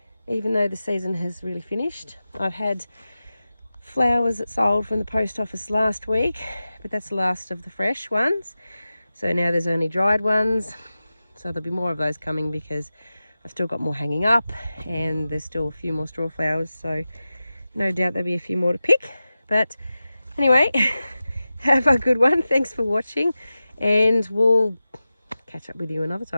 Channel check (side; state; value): both; inverted; correlation -0.95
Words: even though the season has really finished. I've had flowers that sold from the post office last week, but that's the last of the fresh ones. So now there's only dried ones. So there'll be more of those coming because I've still got more hanging up and there's still a few more straw flowers. So no doubt there'll be a few more to pick. But anyway, have a good one. Thanks for watching and we'll catch up with you another